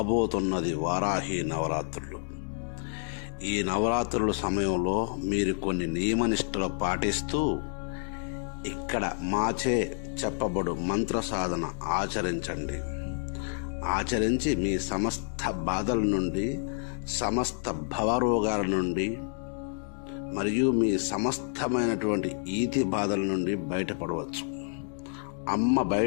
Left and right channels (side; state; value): right; silent; 59 dB below the other